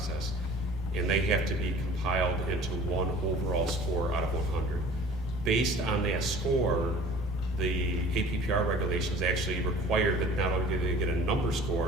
And they have to be compiled into one overall score out of 100. Based on that score, the APPR regulations actually require that not only do they get a number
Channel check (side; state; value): both; normal; correlation 0.47